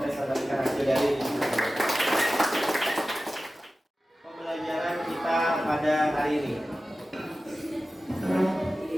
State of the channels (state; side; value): normal; both; correlation 0.95